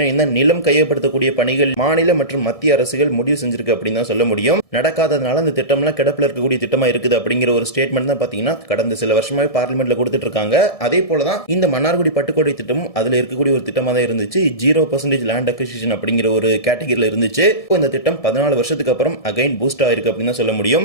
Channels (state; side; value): late; right; 1.6 ms